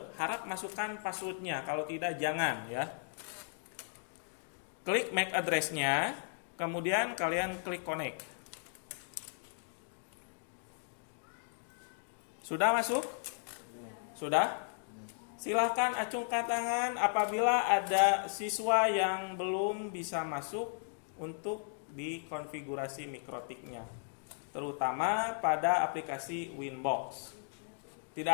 harap masukkan passwordnya. Kalau tidak jangan ya. Klik MAC address-nya, kemudian kalian klik connect. Sudah masuk? Sudah? Silahkan acungkan tangan apabila ada siswa yang belum bisa masuk untuk di konfigurasi mikrotiknya, terutama pada aplikasi Winbox. Tidak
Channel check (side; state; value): right; silent; digital silence